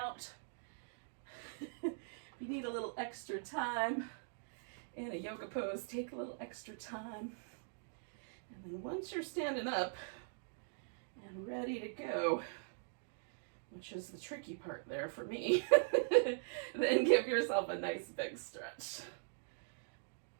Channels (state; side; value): silent; left; digital silence